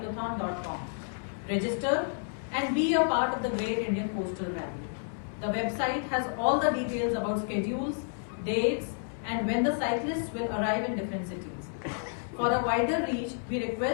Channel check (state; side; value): silent; right; 56 dB below the other